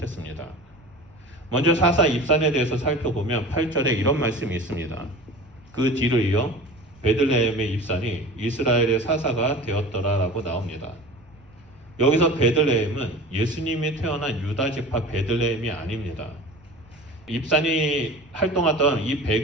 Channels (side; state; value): right; noise; rumble, 27 dB below the sound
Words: 먼저 사사 입산에 대해서 살펴보면 8절에 이런 말씀이 있습니다. 그 뒤를 이어 베들레헴의 입산이 이스라엘의 사사가 되었더라라고 나옵니다. 여기서 베들레헴은 예수님이 태어난 유다 지파 베들레헴이 아닙니다. 입산이 활동하던 이